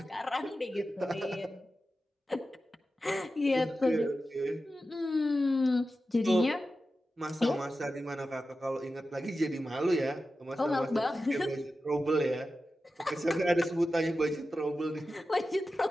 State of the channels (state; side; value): normal; both; correlation 0.92